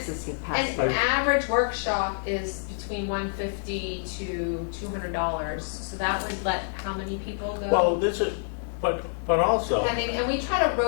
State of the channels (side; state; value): right; silent; digital silence